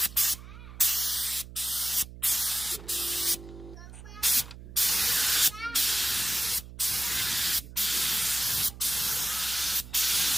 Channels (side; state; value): right; noise; hum, 15 dB below the sound